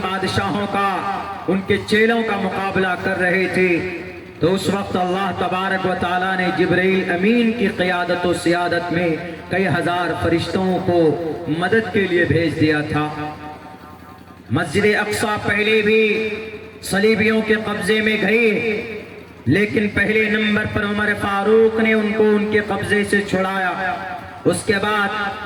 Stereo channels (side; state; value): both; identical; correlation 1.00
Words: بادشاہوں کا، ان کے چیلوں کا مقابلہ کر رہے تھے، تو اس وقت اللہ تبارک و تعالیٰ نے جبرائیل امین کی قیادت و سیادت میں کئی ہزار فرشتوں کو مدد کے لیے بھیج دیا تھا۔ مسجد اقصی پہلے بھی صلیبیوں کے قبضے میں گئی، لیکن پہلے نمبر پر عمر فاروق نے ان کو ان کے قبضے سے چھڑایا۔ اس کے بعد